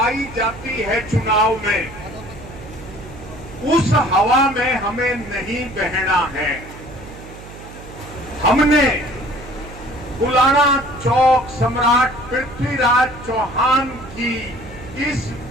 जाती है चुनाव में, उस हवा में हमें नहीं बहना है। हमने गुलाना चौक सम्राट पृथ्वीराज चौहान की इस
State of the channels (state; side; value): noise; right; hum, 16 dB below the sound